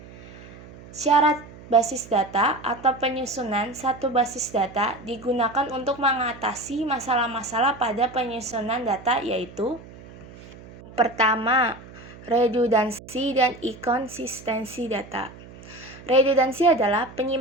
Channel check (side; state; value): right; noise; hum, 18 dB below the sound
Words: Syarat basis data atau penyusunan satu basis data digunakan untuk mengatasi masalah-masalah pada penyusunan data, yaitu pertama, redundansi dan inkonsistensi data. Redundansi adalah